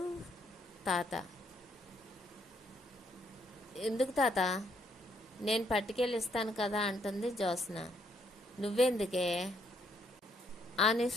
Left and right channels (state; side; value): normal; both; correlation 0.71